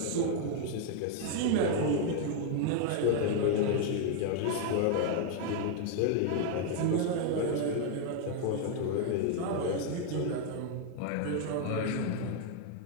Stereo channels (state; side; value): different; both; correlation 0.00